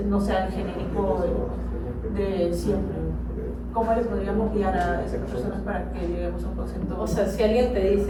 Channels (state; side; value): identical; both; correlation 1.00